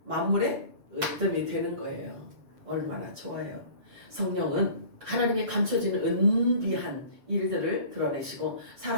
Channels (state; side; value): late; left; 7.2 ms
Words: 만물의 으뜸이 되는 거예요. 얼마나 좋아요. 성령은 하나님의 감춰진 은비한 일들을 드러내시고